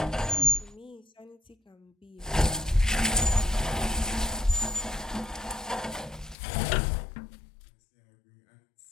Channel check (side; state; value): right; drops out; at 6.4 s